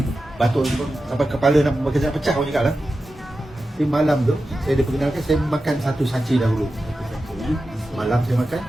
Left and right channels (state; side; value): normal; both; correlation 0.92